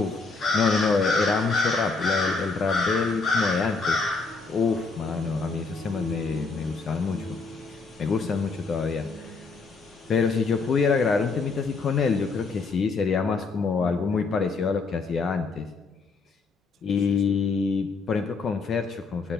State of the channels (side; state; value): right; quieter; 4.3 dB